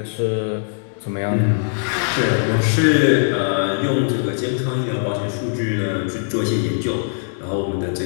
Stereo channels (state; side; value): silent; right; digital silence